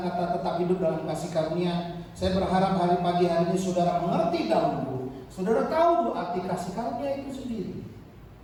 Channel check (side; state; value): both; identical; correlation 1.00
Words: kata tetap hidup dalam kasih karunia, saya berharap hari pagi hari ini saudara mengerti dahulu. Saudara tahu arti kasih karunia itu sendiri.